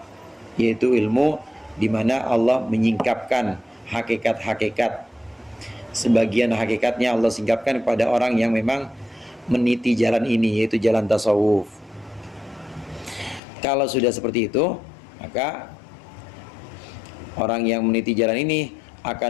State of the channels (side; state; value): right; drops out; at 13.4 s